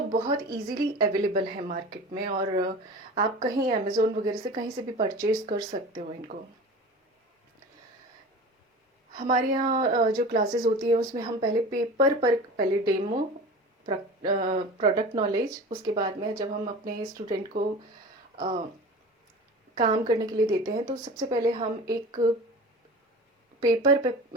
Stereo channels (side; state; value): both; normal; correlation 0.36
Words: बहुत इजीली अवेलेबल है मार्केट में, और आप कहीं अमेज़ोन वगैरह से कहीं से भी परचेज कर सकते हो इनको। हमारे यहाँ जो क्लासेस होती है उसमें हम पहले पेपर पर पहले डेमो, प्रोडक्ट नॉलेज, उसके बाद में जब हम अपने स्टूडेंट को अ, काम करने के लिए देते हैं तो सबसे पहले हम एक पेपर पे